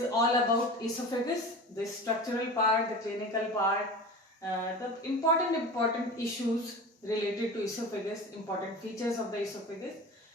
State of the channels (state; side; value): normal; both; correlation 0.33